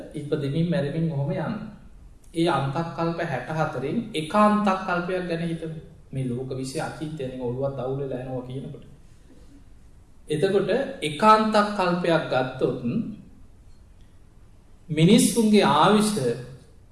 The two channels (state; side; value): identical; both; correlation 1.00